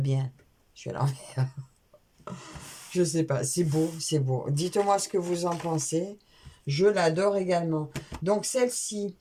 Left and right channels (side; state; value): both; identical; correlation 1.00